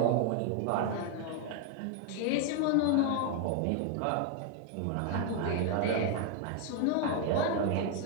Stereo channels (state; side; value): different; both; correlation 0.01